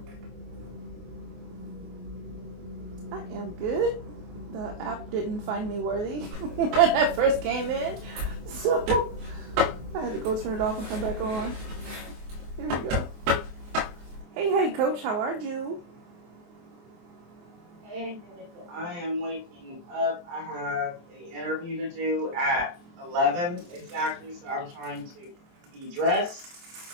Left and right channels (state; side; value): late; left; 23 ms